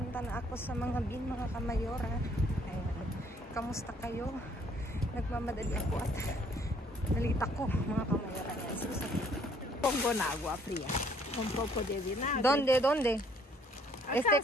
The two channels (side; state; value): both; normal; correlation 0.62